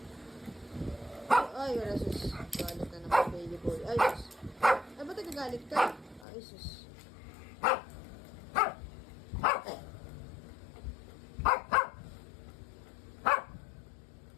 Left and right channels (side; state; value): right; drops out; at 6.2 s